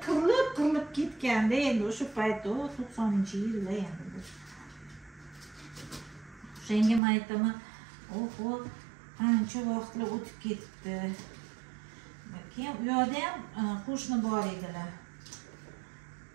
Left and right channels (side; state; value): left; drops out; at 7.0 s